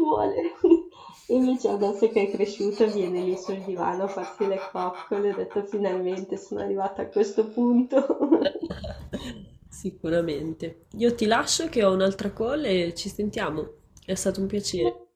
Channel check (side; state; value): both; identical; correlation 1.00